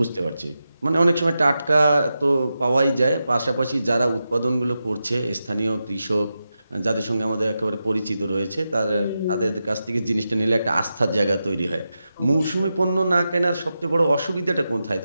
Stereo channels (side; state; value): both; inverted; correlation -0.90